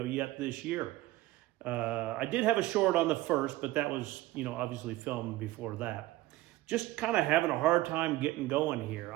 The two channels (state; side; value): quieter; left; 17.2 dB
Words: yet this year. I did have a short on the 1st, but that was, obviously filmed before that. Just kind of having a hard time getting going here.